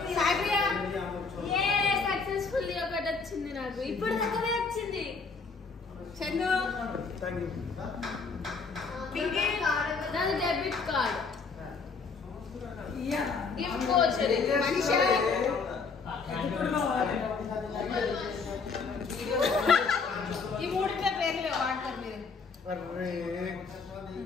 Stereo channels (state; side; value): quieter; right; 4.8 dB